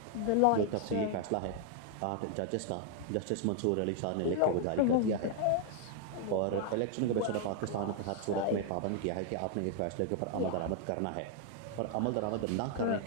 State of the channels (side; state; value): both; different; correlation 0.00